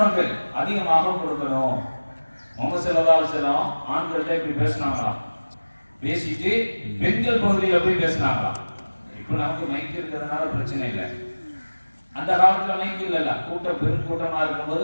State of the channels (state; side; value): inverted; both; correlation -1.00